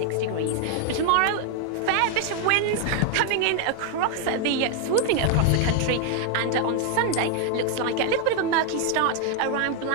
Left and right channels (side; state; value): both; different; correlation 0.00